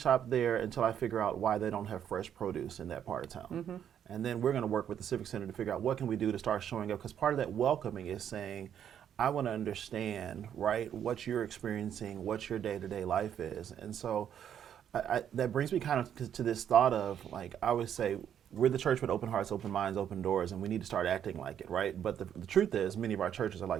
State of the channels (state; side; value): quieter; left; 9.3 dB